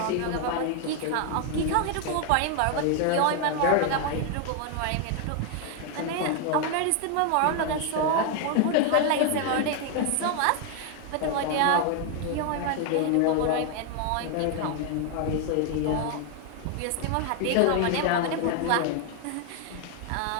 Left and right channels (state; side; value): different; both; correlation 0.01